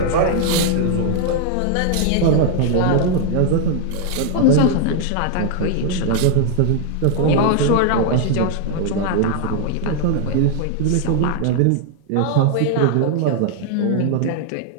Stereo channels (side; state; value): both; different; correlation 0.00